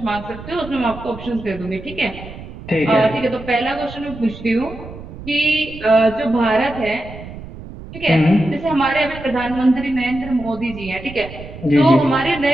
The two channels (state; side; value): noise; right; rumble, 14 dB below the sound